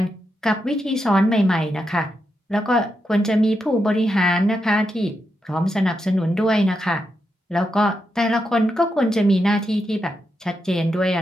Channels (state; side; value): normal; both; correlation 0.85